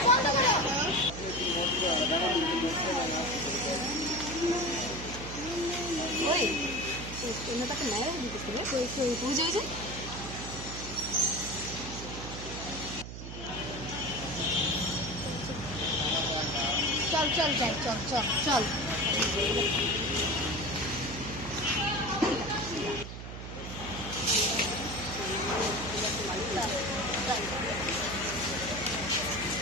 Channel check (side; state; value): right; noise; hum, 9 dB below the sound